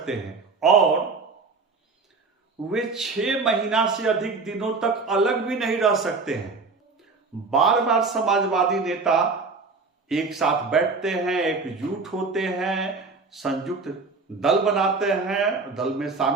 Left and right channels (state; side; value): quieter; left; 4.2 dB